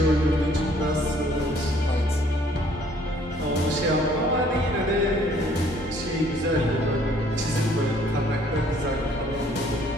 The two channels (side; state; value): both; normal; correlation 0.60